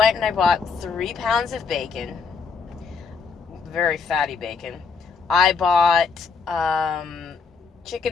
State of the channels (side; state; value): right; quieter; 5.3 dB